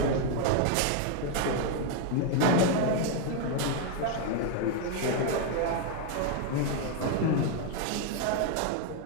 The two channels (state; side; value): different; both; correlation 0.01